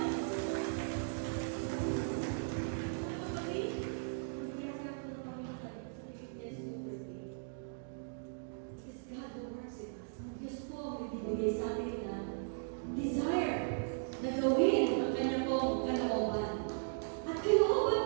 Sa atin na desire na gawin ang kanyang pong kalooban. At kalooban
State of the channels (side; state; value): left; silent; digital silence